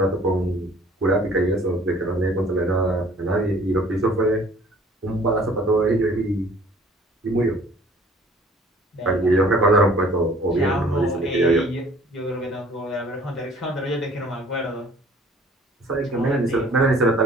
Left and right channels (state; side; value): normal; both; correlation 0.54